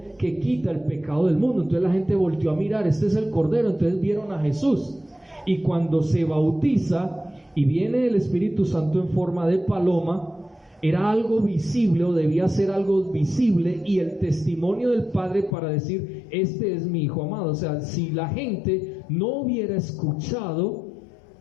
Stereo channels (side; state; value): right; drops out; at 15.6 s